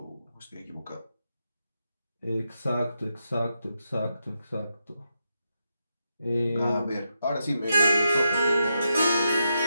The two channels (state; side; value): inverted; both; correlation -0.85